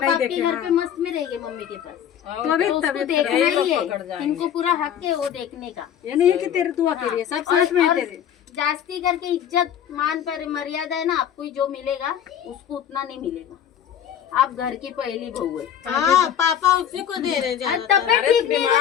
आपके घर पे मस्त में रहेंगे मम्मी के पास, तो अभी तो उसको देखना ही है। इनको पूरा हक है वो देखने का। ये नहीं है कि तेरे दुआ के लिए सब साथ में है तेरे। जास्ती करके इज्जत मान पर मर्यादा है ना, आपको जो मिलेगा उसको उतना नहीं मिलेगा। आप घर की पहली बहू है। हाँ पापा उसी को दे रहे ज्यादा। तबियत ठीक नहीं है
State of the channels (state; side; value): quieter; right; 9.6 dB